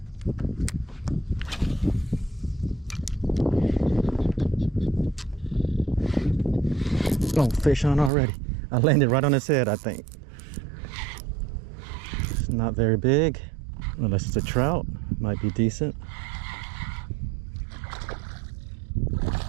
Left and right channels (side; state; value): left; drops out; at 8.1 s